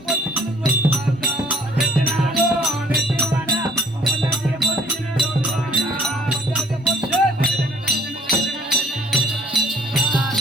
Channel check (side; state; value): both; normal; correlation 0.60